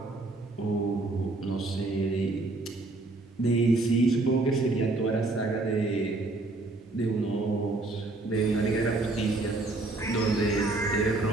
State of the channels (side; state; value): left; quieter; 3.1 dB